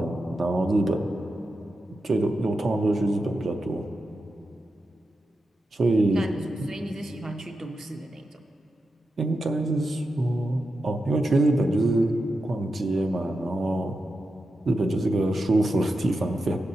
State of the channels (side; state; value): both; normal; correlation 0.89